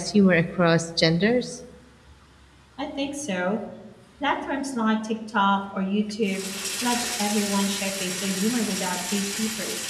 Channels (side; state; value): both; identical; correlation 1.00